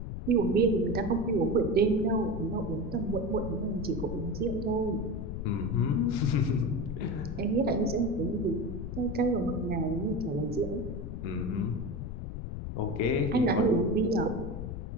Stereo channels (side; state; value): left; noise; rumble, 6 dB below the sound